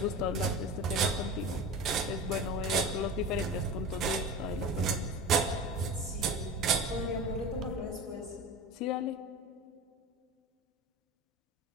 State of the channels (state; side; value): normal; both; correlation 0.31